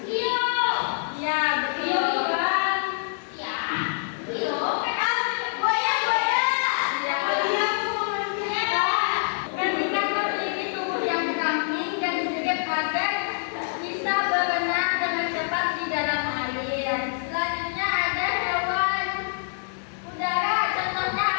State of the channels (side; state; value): right; silent; digital silence